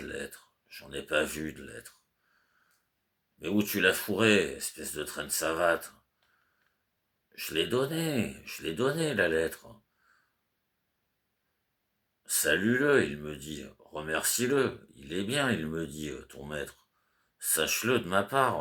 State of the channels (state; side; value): identical; both; correlation 1.00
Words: lettre. J'en ai pas vu de lettre. Mais où tu l'as fourré, espèce de traîne savate? Je l'ai donné, la lettre. Salue-le, il me dit. Remercie-le. Il est bien, il me dit, ton maître. Sache-le de ma